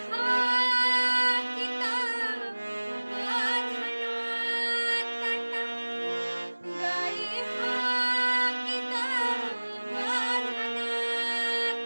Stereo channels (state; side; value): inverted; both; correlation -1.00